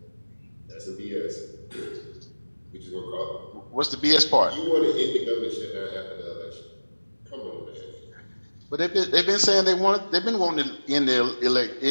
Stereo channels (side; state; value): both; inverted; correlation -1.00